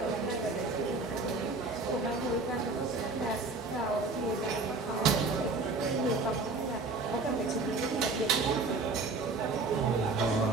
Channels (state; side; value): quieter; left; 3.6 dB